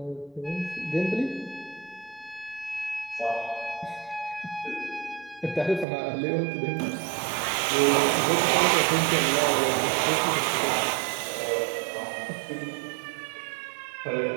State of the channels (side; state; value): left; drops out; at 5.9 s